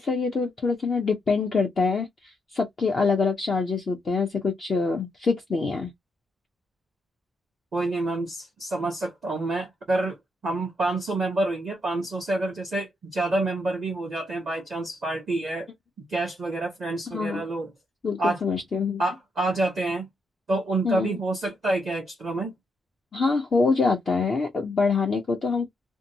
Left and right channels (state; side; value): normal; both; correlation 0.78